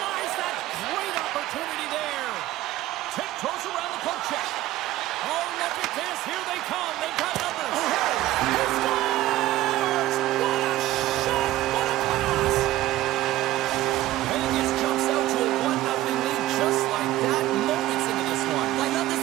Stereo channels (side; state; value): left; quieter; 15.5 dB